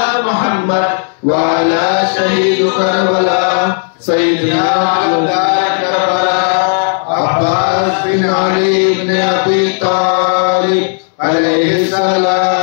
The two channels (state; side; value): silent; right; digital silence